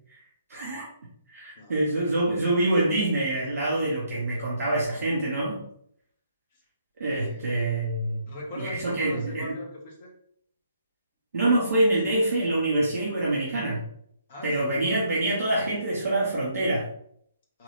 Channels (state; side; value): inverted; both; correlation -0.72